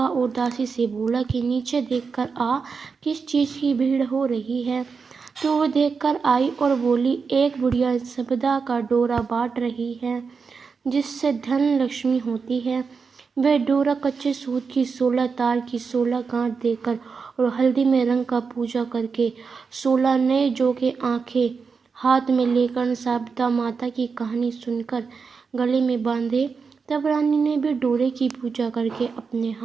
और दासी से बोला कि नीचे देखकर आ, किस चीज की भीड़ हो रही है। तो वो देखकर आई और बोली, एक बुढ़िया संपदा का डोरा बांट रही है जिससे धन लक्ष्मी होती है। वह डोरा कच्चे सूत की 16 तार की 16 गांठ देकर और हल्दी में रंग का पूजा करके 16 नए जोगे आंखें हाथ में लेकर संपदा माता की कहानी सुनकर गले में बांधे। तब रानी ने भी डोरे की पूजा करके अपने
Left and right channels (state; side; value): quieter; left; 5.3 dB